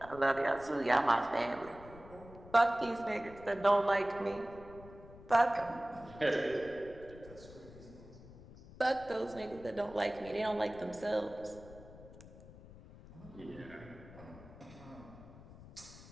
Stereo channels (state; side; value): noise; left; rumble, 18 dB below the sound